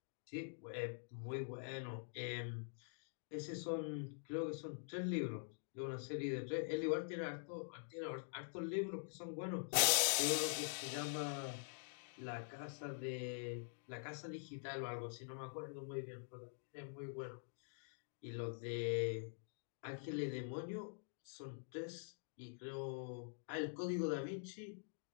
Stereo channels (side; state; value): right; silent; digital silence